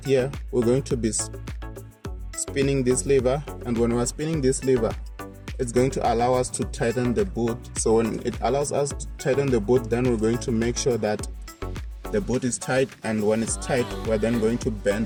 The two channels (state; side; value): identical; both; correlation 1.00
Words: here, we're going to be spinning this lever, and when we're spinning this lever, it's going to allow us to tighten the boot. So when it allows us to tighten the boot, then we're going to make sure that the boot is tight, and when it's tight, we're then going to bend